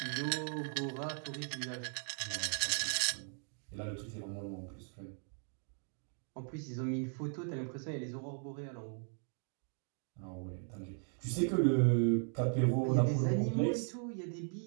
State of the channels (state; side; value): silent; left; 53 dB below the other